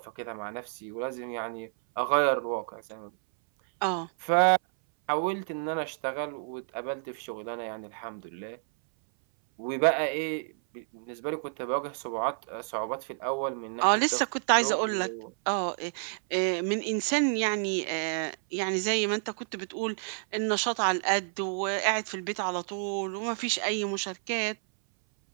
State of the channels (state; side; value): silent; left; 58 dB below the other